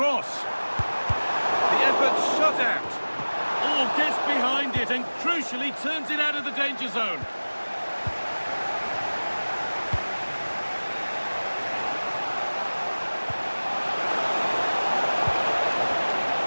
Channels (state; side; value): inverted; both; correlation -1.00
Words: The effort shut out. Oh, gets behind it and crucially turns it out of the danger zone.